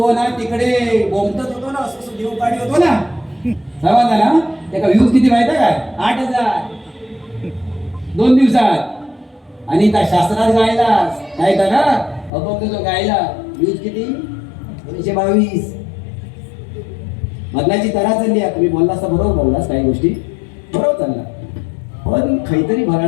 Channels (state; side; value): drops out; right; at 12.3 s